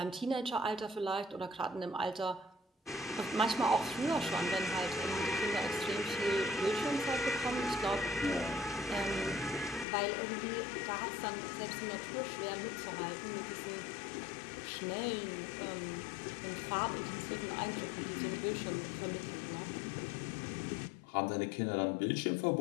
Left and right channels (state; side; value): drops out; right; at 9.9 s